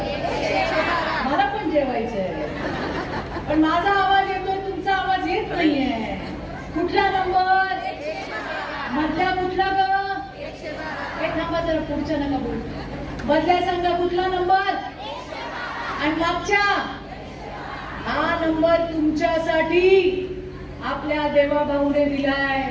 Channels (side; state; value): both; identical; correlation 1.00